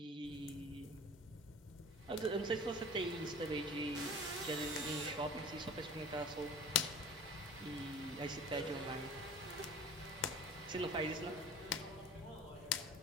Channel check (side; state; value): both; normal; correlation 0.42